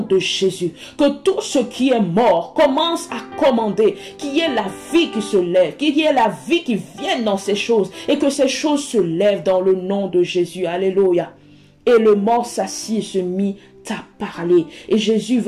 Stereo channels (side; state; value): both; identical; correlation 1.00